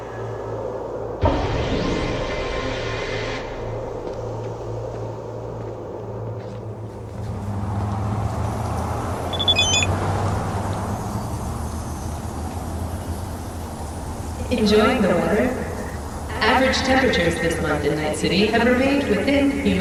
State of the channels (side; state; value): both; identical; correlation 1.00